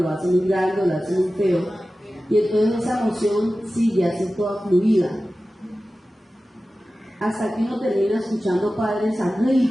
hace muy grande, o lo hace muy feo. Y entonces esa emoción sigue así toda fluida. Hasta que uno termina escuchando padres a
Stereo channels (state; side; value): normal; both; correlation 0.95